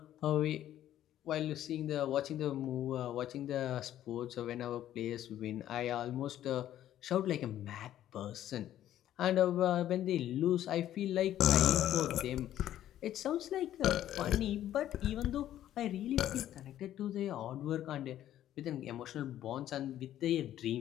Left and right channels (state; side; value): quieter; right; 12.2 dB